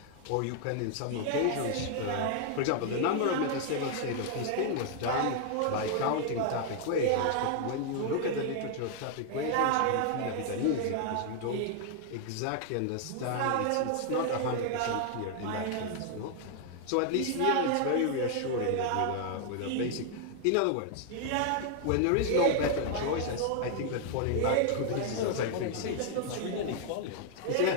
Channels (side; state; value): both; different; correlation 0.00